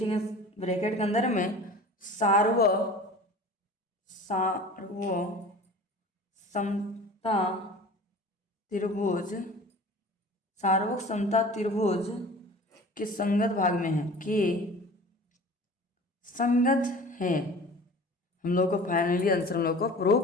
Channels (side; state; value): both; normal; correlation 0.41